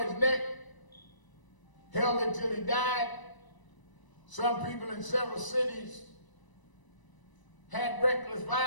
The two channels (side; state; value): right; late; 1.0 ms